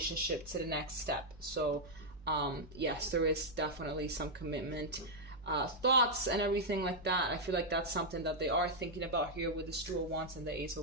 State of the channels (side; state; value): right; noise; hum, 20 dB below the sound